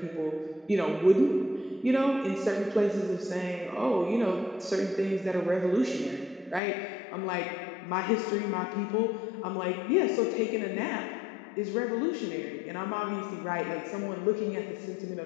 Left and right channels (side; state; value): right; drops out; at 6.6 s